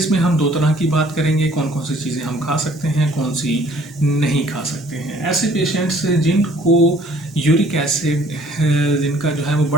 में हम दो तरह की बात करेंगे, कौन कौन सी चीज़ें हम खा सकते हैं, कौन सी नहीं खा सकते हैं। ऐसे पेशेंट्स जिनको यूरिक एसिड जिनका जो है वो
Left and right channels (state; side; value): normal; both; correlation 0.57